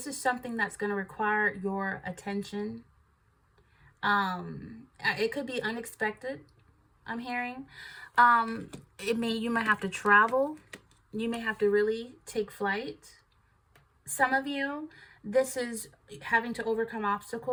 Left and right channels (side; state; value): both; identical; correlation 1.00